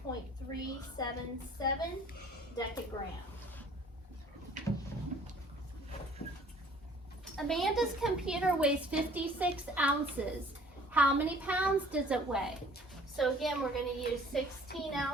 0.377 decagram. Amanda's computer weighs 56 ounces. How many pounds does it weigh? So again, we're going to use 16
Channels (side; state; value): both; normal; correlation 0.53